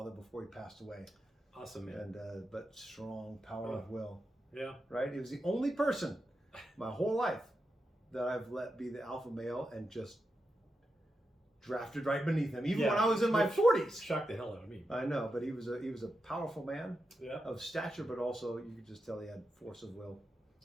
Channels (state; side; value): normal; both; correlation 0.88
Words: before he passed away. Awesome, man. And but strong power of will. Yeah. Right? He was the only person my whole life that I've let be the alpha male and just drafted right beneath him, even when I was in my 40s. Shocked the hell out of me. I know, but he was a powerful man of stature, but also you could just tell he had force of will.